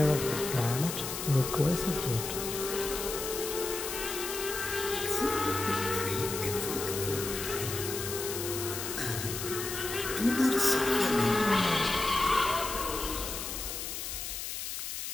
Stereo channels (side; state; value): left; noise; hiss, 5 dB below the sound